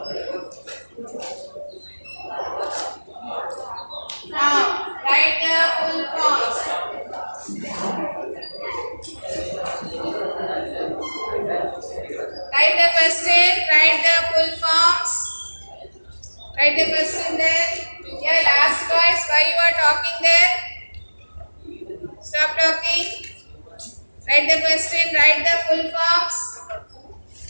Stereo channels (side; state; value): both; inverted; correlation -1.00